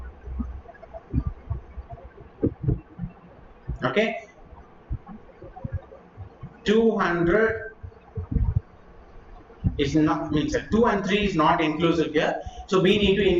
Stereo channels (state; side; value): identical; both; correlation 1.00